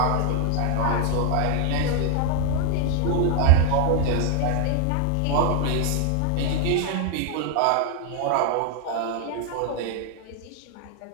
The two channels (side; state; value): both; different; correlation 0.00